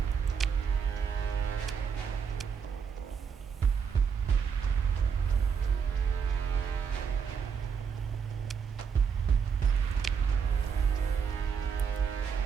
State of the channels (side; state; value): left; quieter; 6.6 dB